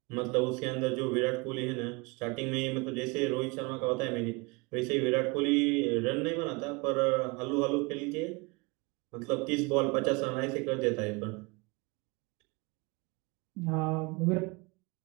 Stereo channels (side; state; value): left; quieter; 27.4 dB